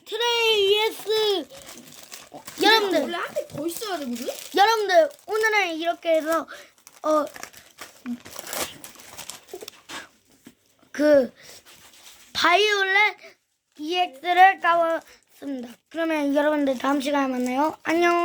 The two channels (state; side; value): identical; both; correlation 1.00